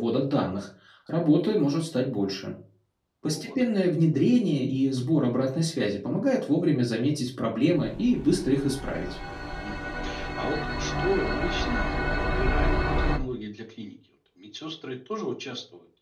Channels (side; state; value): both; identical; correlation 1.00